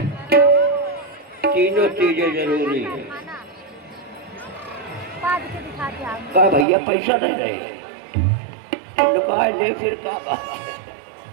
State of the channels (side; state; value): left; drops out; at 6.7 s